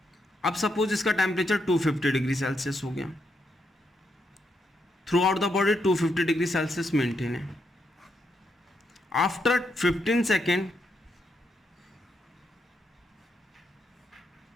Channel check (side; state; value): both; normal; correlation 0.80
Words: अब सपोज इसका टेम्परेचर 250 डिग्री सेल्सियस हो गया, through out the body 250 degree Celsius maintain है। आफ्टर 15 सेकेंड